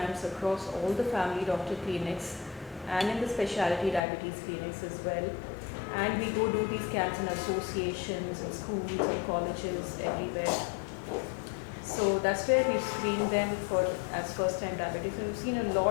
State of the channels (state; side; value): drops out; right; at 4.0 s